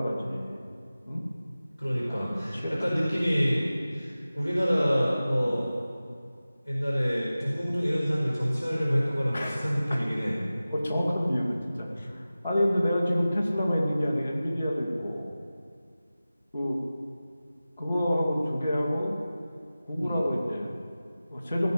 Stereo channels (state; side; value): inverted; both; correlation -0.96